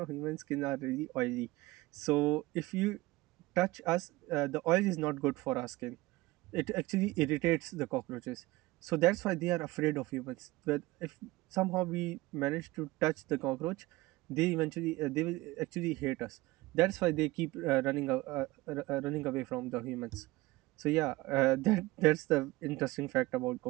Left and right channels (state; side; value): quieter; left; 20.3 dB